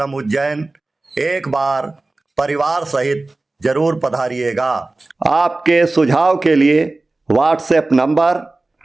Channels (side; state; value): left; quieter; 3.1 dB